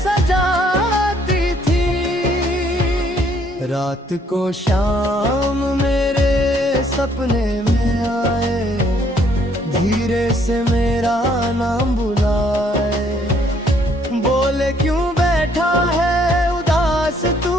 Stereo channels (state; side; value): normal; both; correlation 0.66